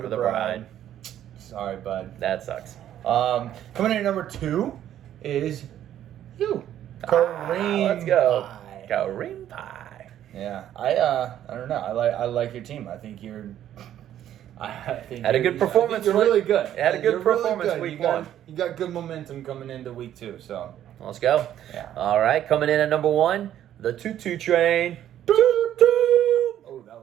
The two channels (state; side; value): quieter; left; 11.3 dB